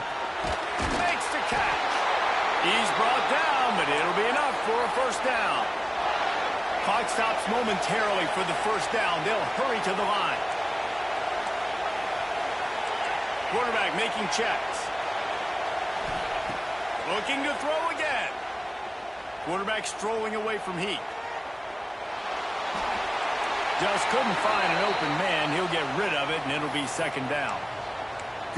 Makes the catch. He's brought down, but it'll be enough for a 1st down. Clock stops momentarily for the 1st down. They'll hurry to the line. Quarterback making checks. Looking to throw again. Quarterback strolling away from Heat. Just couldn't find an open man. He'll get rid of it, and it'll be 2nd down.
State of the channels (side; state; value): both; identical; correlation 1.00